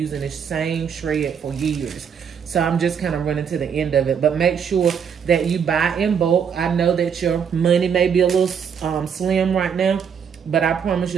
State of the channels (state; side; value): quieter; left; 7.3 dB